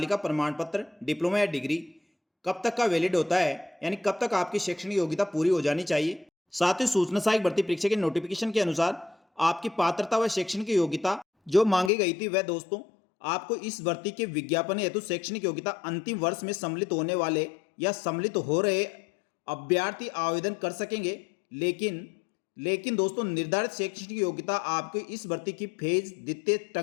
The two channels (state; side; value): drops out; right; at 11.9 s